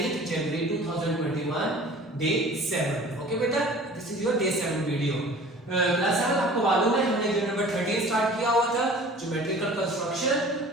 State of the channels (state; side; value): normal; both; correlation 0.45